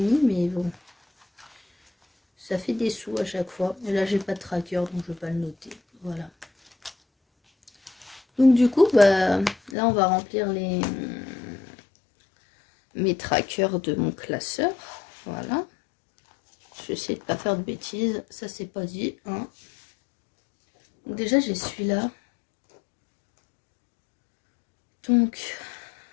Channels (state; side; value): drops out; right; at 9.8 s